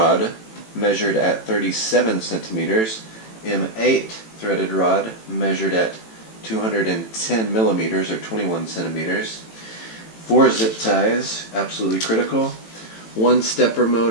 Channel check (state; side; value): late; right; 18 ms